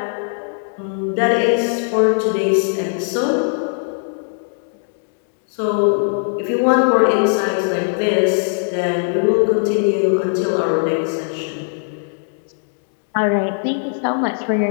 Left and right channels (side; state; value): right; silent; digital silence